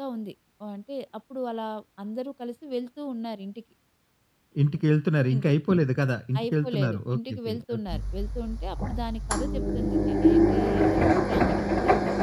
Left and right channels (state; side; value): identical; both; correlation 1.00